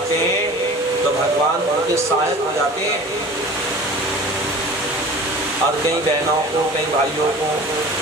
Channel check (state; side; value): normal; both; correlation 0.41